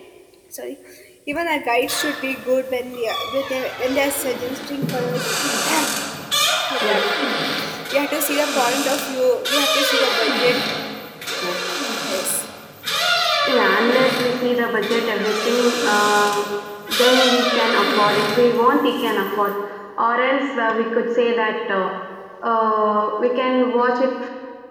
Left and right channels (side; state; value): both; identical; correlation 1.00